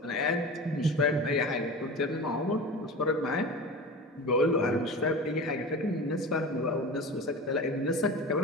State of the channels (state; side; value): normal; both; correlation 0.32